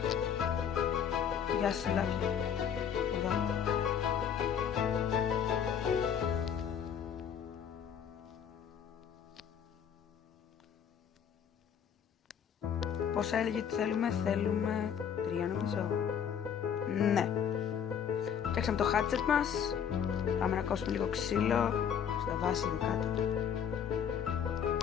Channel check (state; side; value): quieter; right; 8.2 dB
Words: Γεια σας, λάθη. Εδώ. Πόσα έλεγε ότι θέλουμε 3 νομίζω. Ναι. Φτιάξαμε το hatchet μας. Πάμε να κόψουμε λίγο ξύλο. Στα βάση εδώ κάτω.